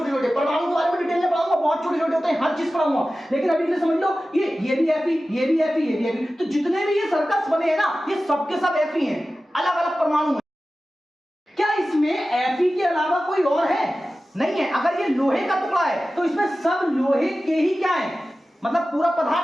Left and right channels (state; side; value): normal; both; correlation 0.95